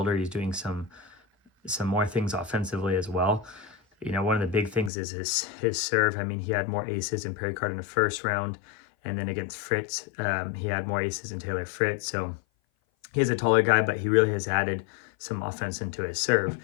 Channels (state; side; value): drops out; right; at 4.9 s